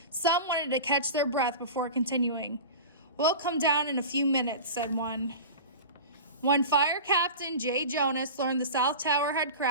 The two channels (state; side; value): inverted; both; correlation -0.32